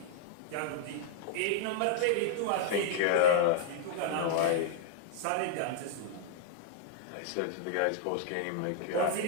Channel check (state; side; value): different; both; correlation -0.01